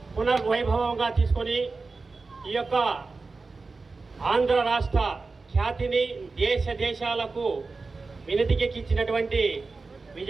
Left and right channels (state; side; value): quieter; left; 4.0 dB